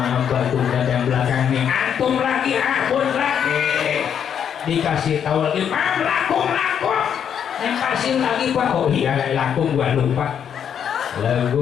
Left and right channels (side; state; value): right; quieter; 8.4 dB